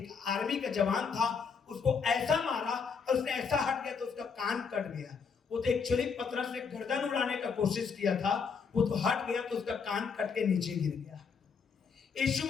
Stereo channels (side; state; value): right; quieter; 5.8 dB